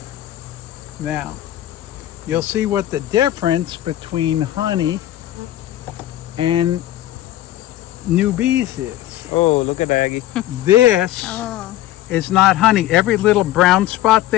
Now, you'll see what the difference between honey and new bees is. Oh, look at Aggie. This Oh. is not honey. Every little brown spot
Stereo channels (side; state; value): right; quieter; 14.0 dB